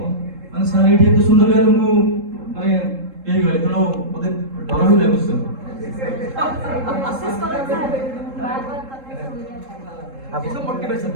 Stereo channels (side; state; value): left; late; 3.7 ms